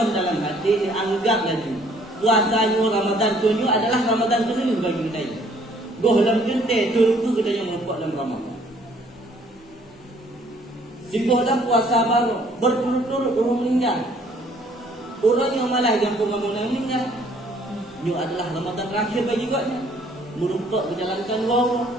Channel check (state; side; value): normal; both; correlation 0.61